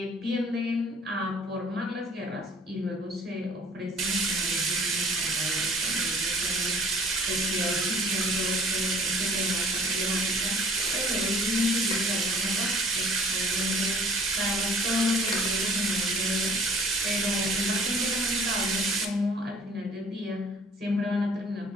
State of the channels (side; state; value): both; normal; correlation 0.52